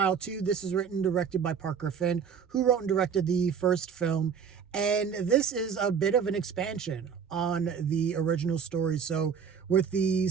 2. This is written and directed by Parker Finn, who wrote and directed the first film. And this is a bit of an expansion on the original story. So with the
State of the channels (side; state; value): left; quieter; 6.9 dB